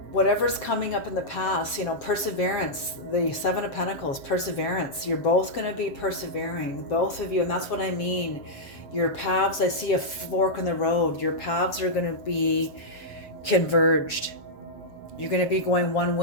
Whatever's coming up in the past, you know, perseverance, the Seven of Pentacles, perseverance. You're both going to be persevering, both of you. And that's what I mean. Your paths, I see a fork in the road. Your paths are going to be converged. You're going to be going one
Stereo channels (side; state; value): right; late; 7.3 ms